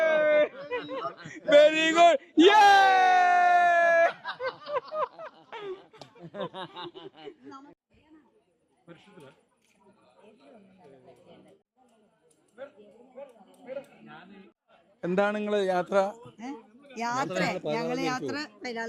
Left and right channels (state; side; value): identical; both; correlation 1.00